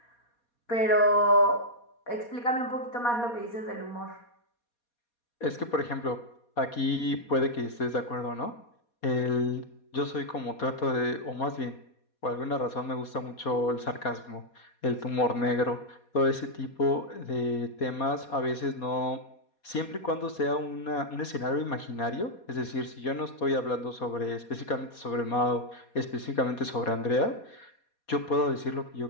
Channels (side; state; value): right; late; 4.2 ms